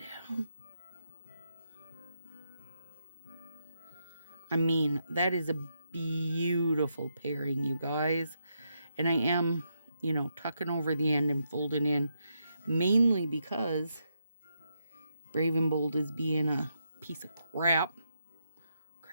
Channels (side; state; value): both; inverted; correlation -0.82